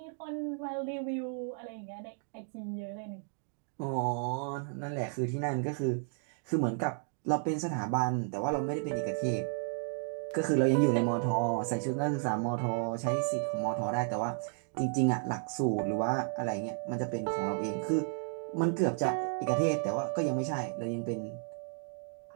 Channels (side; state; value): left; silent; 56 dB below the other